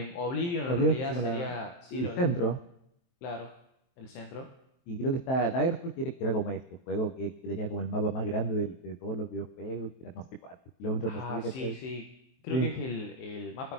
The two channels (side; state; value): right; late; 23 ms